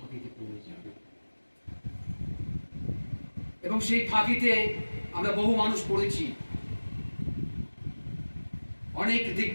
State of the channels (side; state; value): both; inverted; correlation -1.00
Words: পড়ে যাবে। এবং সেই ফাঁকিতে আমরা বহু মানুষ পড়েছি। অনেক